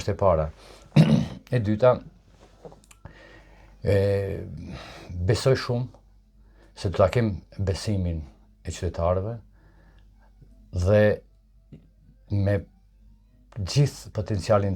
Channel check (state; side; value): identical; both; correlation 1.00